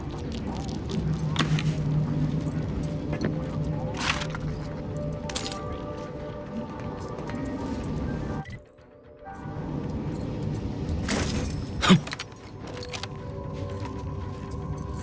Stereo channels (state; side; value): identical; both; correlation 1.00